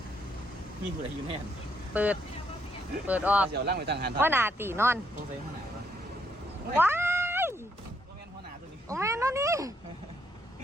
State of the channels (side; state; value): both; normal; correlation 0.73